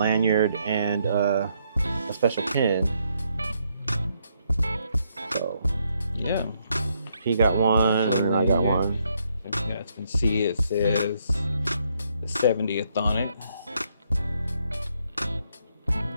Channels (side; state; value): both; inverted; correlation -0.74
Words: and a special pin. So yeah, he got one, and then I got one. So you guys can see it says the 70th on it,